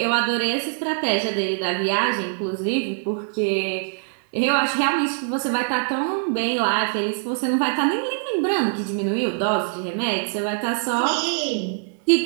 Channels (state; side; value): silent; left; 63 dB below the other